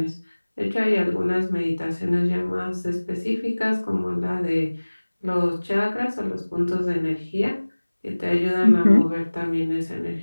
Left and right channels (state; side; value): inverted; both; correlation -1.00